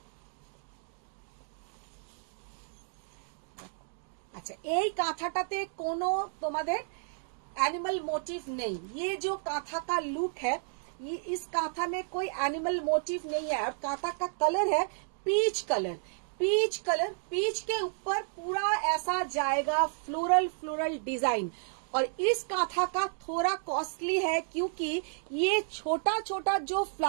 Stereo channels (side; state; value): left; silent; digital silence